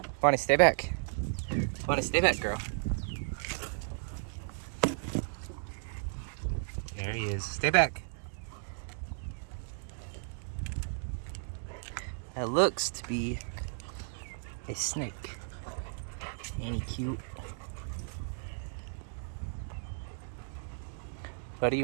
Bonnie, stay back. Bonnie, stay back, girl. There he is. Stay back. That looks to be a snake. Ain't he cute? Buddy, you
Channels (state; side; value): silent; left; digital silence